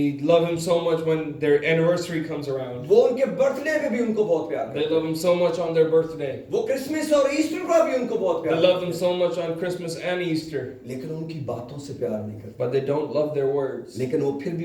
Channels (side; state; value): both; identical; correlation 1.00